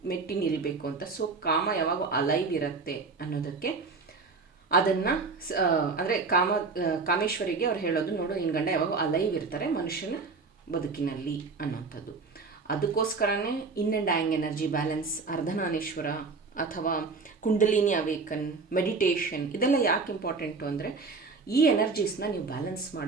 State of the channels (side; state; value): left; quieter; 4.3 dB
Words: ಮೆಟ್ಟಿ ನಿಲ್ಲಬೇಕು ಅಂತ. ಸೊ ಕಾಮ ಯಾವಾಗ ಅಲೈವ್ ಇರುತ್ತೆ ಅನ್ನೋದಕ್ಕೆ ಅದನ್ನು ಅಂದರೆ ಕಾಮೇಶ್ವರಿಗೆ ಅವ್ರು ಹೇಳೋದು, ನೋಡು ನಿನ್ನ ಗಂಡ ಯಾವಾಗ ಅಲೈವ್ ಇರ್ತಾರೆ ಮನುಷ್ಯನ ಬದುಕಿನಲ್ಲಿ ಅನ್ನೋಂಥದ್ದು. ಅದಕ್ಕೋಸ್ಕರನೇ yin and yang energy balance, Ardhanarishvara ಅಥವಾ ಕುಂಡಲಿನಿ ಅವೇಕನ್, ಮೆಡಿಟೇಷನ್, ಇದೆಲ್ಲ ಯಾಕೆ ಇಂಪಾರ್ಟೆಂಟು ಅಂದರೆ, ಈ ಎನರ್ಜೀಸ್ನ ನೀವು ಬ್ಯಾಲೆನ್ಸ್